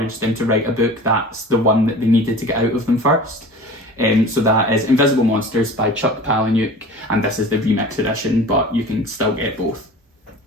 them to write a book. That's the one that they needed to get out of them first. So that is Invisible Monsters by Chuck Palahniuk, and this is the remix edition, but you can still get both.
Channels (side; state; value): both; normal; correlation 0.39